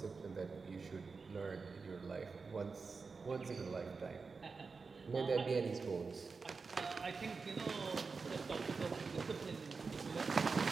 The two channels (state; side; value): quieter; left; 4.6 dB